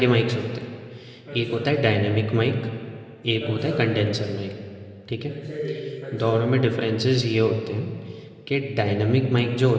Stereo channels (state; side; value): identical; both; correlation 1.00